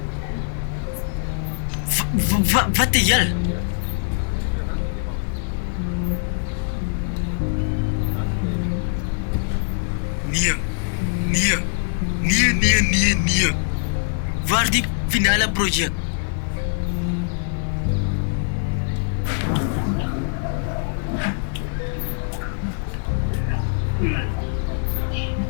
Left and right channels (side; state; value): right; silent; digital silence